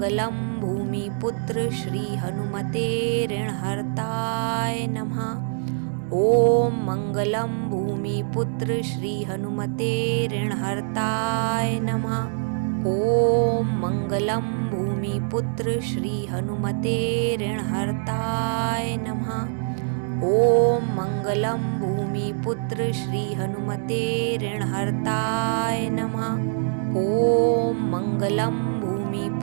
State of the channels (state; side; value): silent; left; digital silence